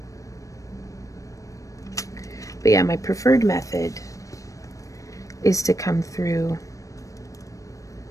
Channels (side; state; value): right; late; 0.16 ms